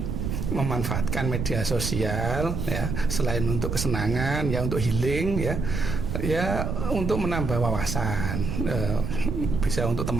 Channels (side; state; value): right; noise; rumble, 2 dB below the sound